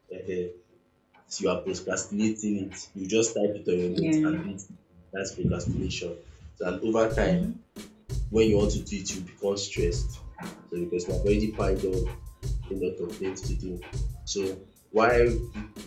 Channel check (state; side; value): identical; both; correlation 1.00